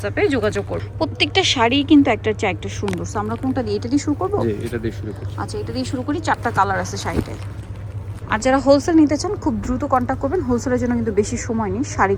যোগাযোগ করবেন। প্রত্যেকটা শাড়ি কিন্তু একটার চেয়ে একটা সুন্দর। সো আমরা কোনটা দিয়ে, এটা দিয়ে শুরু করবো? এটা দিয়ে শুরু করি। আচ্ছা, এটা দিয়ে শুরু করি। 4টা কালার আছে শাড়িটায়। আর যারা হোলসেল নিতে চান খুব দ্রুত কন্ট্যাক্ট করবেন। হোলসেলের জন্য কিন্তু বেশি সময় নেই।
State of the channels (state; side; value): identical; both; correlation 1.00